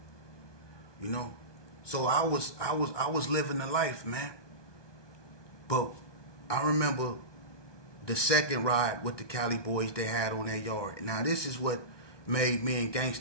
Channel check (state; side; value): late; right; 1.2 ms